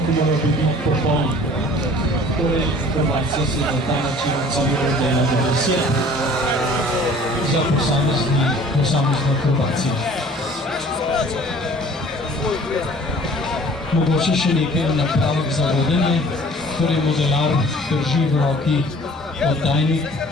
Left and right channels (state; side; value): normal; both; correlation 0.49